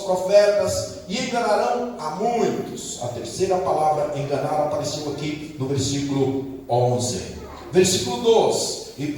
profetas e enganarão a muitos. A terceira palavra, enganar, apareceu aqui no versículo 11. Versículo 12: e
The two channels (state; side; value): identical; both; correlation 1.00